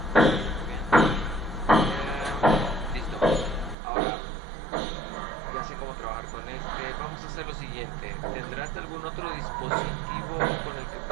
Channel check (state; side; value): drops out; left; at 3.8 s